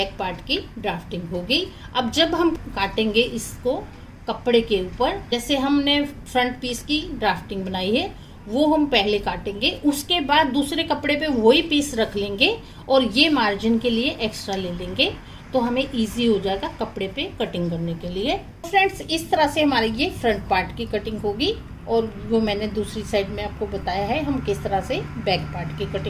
पार्ट की ड्राफ्टिंग हो गई। अब जब हम काटेंगे इसको कपड़े के ऊपर, जैसे हमने फ्रंट पीस की ड्राफ्टिंग बनाई है वो हम पहले काटेंगे, उसके बाद दूसरे कपड़े पे वही पीस रख लेंगे और ये मार्जिन के लिए एक्स्ट्रा ले लेंगे, तो हमें इजी हो जाएगा कपड़े पे कटिंग करने के लिए। फ्रेंड्स, इस तरह से हमारी ये फ्रंट पार्ट की कटिंग होगी, और वो मैंने दूसरी साइड में आपको बताया है हम किस तरह से बैक पार्ट की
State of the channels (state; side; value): identical; both; correlation 1.00